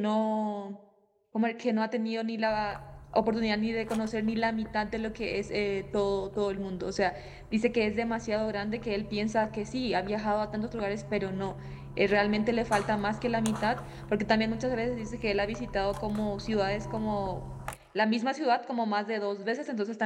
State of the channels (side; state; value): both; identical; correlation 1.00